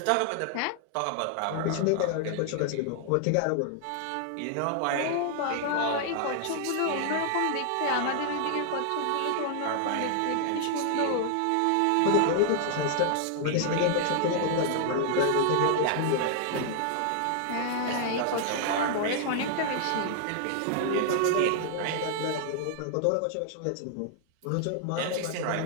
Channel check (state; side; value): different; both; correlation 0.00